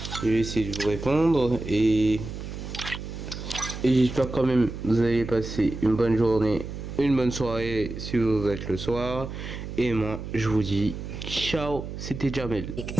Je vais essayer de vous répondre et j'espère quand même que vous allez passer une bonne journée, une bonne soirée si vous êtes le soir. Et moi, je vous dis ciao, c'était Jamel.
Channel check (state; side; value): noise; right; hum, 8 dB below the sound